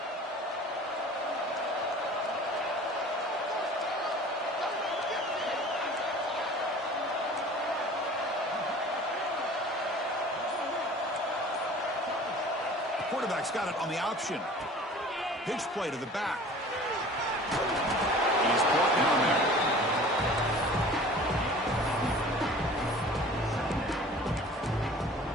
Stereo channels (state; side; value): normal; both; correlation 0.44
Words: Quarterback's got it on the option. Pitch play to the back. And he's brought down there.